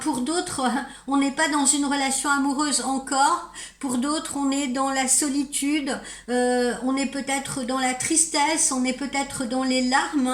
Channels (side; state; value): both; identical; correlation 1.00